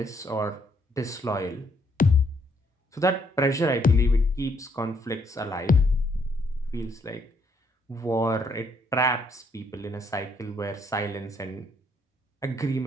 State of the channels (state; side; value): normal; both; correlation 0.70